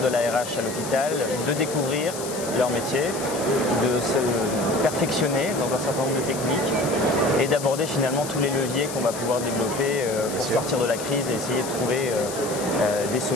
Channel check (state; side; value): noise; left; hiss, 10 dB below the sound